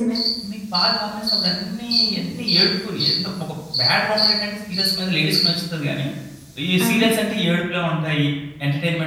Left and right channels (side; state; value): both; identical; correlation 1.00